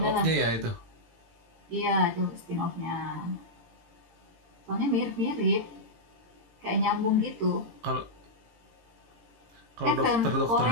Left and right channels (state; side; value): late; left; 18 ms